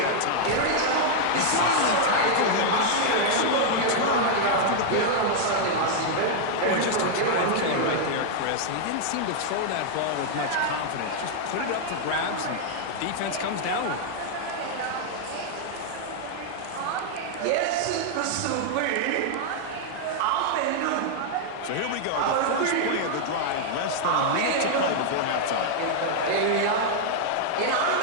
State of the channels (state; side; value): different; both; correlation -0.01